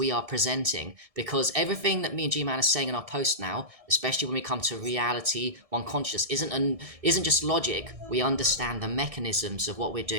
are presenting. Because everything that me and G-Man are saying in our post now, especially when we come to reality, one conscious, isn't just logic. We understand the mechanisms of what we're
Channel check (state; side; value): late; left; 1.6 ms